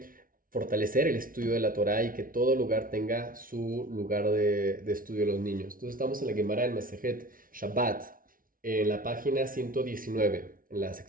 fortalecer el estudio de la Torah y que todo lugar tenga su lugar de estudio de los niños. Entonces estamos en la Gemara en Masejet Shabbat, en la página 119, en la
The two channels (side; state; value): left; late; 0.41 ms